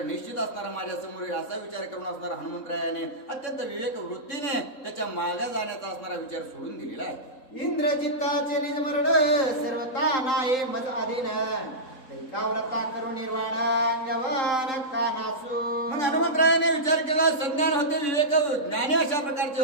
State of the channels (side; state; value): right; late; 3.7 ms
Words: निश्चित असणारा माझ्या समोर येईल असा विचार करून असणारा हनुमंतरायाने अत्यंत विवेक वृत्तीने त्याच्या मागे जाण्याचा असणारा विचार सोडून दिलेला आहे. इंद्रजिताचे निजमरण सर्वता नाही मज अधीन. दैकाव्रता करू निर्वाण अंगवान कानासू. म्हणून हनुमंतरायाने विचार केला, संज्ञान होते, विवेक ज्ञानी अशा प्रकारचे